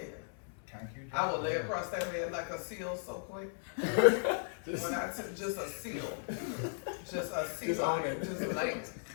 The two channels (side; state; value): right; silent; 54 dB below the other